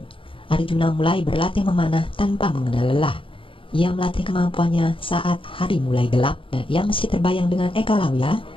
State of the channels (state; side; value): late; right; 0.25 ms